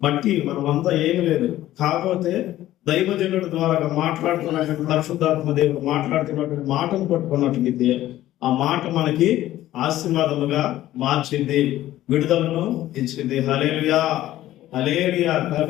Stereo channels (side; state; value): right; quieter; 14.3 dB